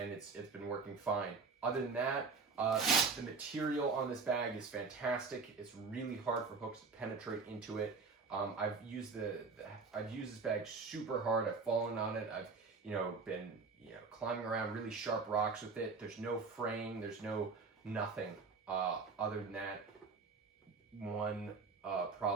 it's been working fine. Other than that, the material on this bag is fantastic. It's really hard for hooks to penetrate into it. I've used this bag super hard. I've fallen on it. I've been climbing around really sharp rocks with it. There's no fraying. There's nothing other than that one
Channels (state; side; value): quieter; left; 4.5 dB